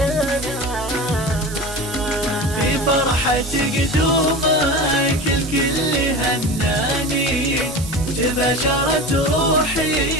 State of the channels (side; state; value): right; noise; hiss, 13 dB below the sound